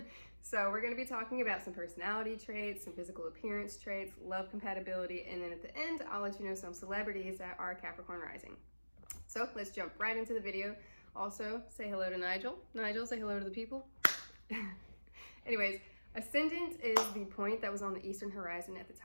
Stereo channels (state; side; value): inverted; both; correlation -1.00